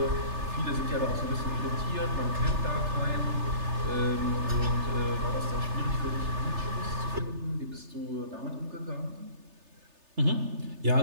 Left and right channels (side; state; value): left; late; 3.3 ms